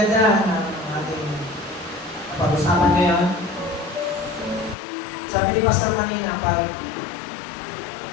ng ating pag-usapan ngayon. Sabi ni Pastor kanina, pag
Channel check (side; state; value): right; drops out; at 4.8 s